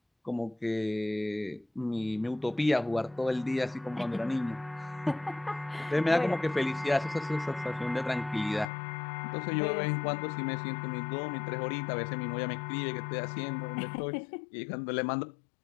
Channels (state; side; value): drops out; right; at 8.7 s